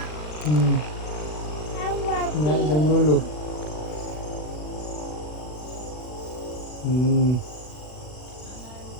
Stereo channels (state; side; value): late; right; 40 ms